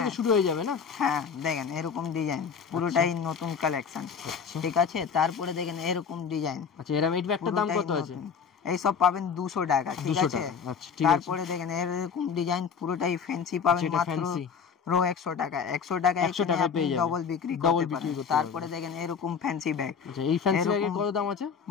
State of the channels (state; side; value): quieter; right; 6.5 dB